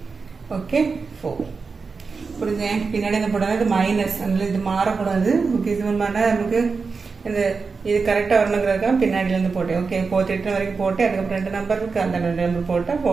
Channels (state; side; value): quieter; left; 4.8 dB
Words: ஓகே 4 புரிஞ்சு பின்னாடி என்ன போடாது இது மைனஸ் அதனால இது மாறக்கூடாது ஓகே. இது மாதிரி நமக்கு இந்த இது கரெக்டாக வரணுங்கிறதுக்காக பின்னாடியிலேருந்து போட்டேன் ஓகே 48 வரைக்கும் போட்டு அதுக்கப்புறம் 2 நம்பர் இருக்கு அந்த 2 நம்பர் போட்டால்